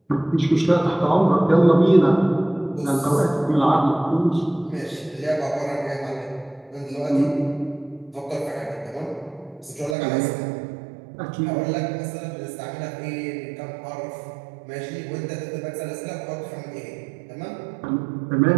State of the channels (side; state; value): left; drops out; at 10.0 s